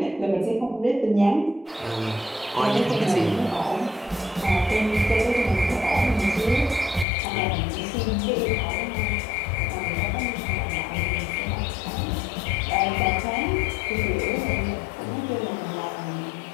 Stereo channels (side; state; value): right; drops out; at 7.1 s